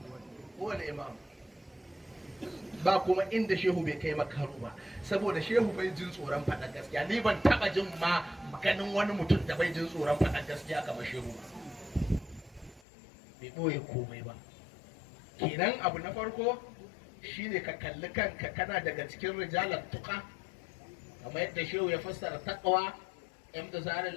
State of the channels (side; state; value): right; drops out; at 12.8 s